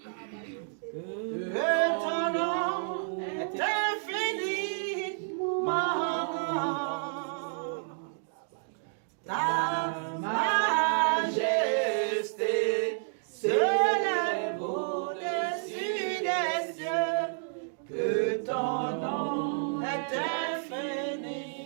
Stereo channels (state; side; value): silent; left; digital silence